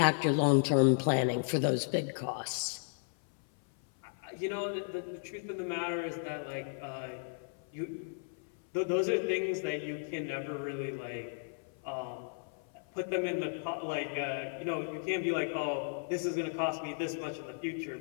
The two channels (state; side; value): silent; right; 55 dB below the other